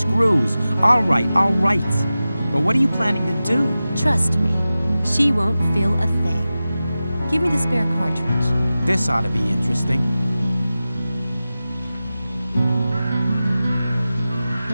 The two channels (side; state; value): both; inverted; correlation -0.95